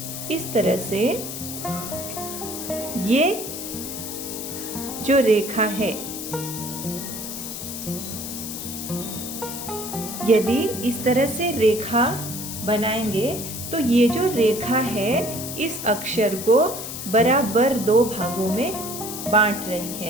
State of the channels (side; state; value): left; noise; hiss, 7 dB below the sound